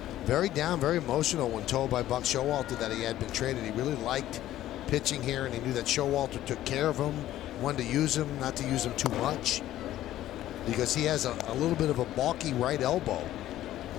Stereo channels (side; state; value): right; quieter; 13.6 dB